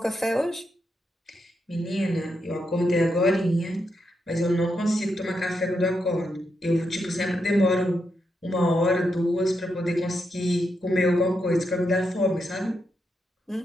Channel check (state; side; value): normal; both; correlation 0.83